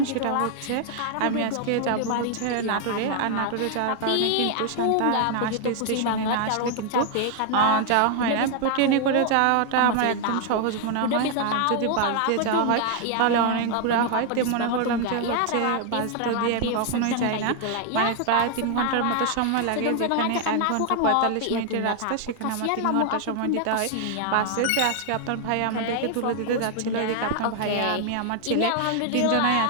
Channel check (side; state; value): both; different; correlation 0.00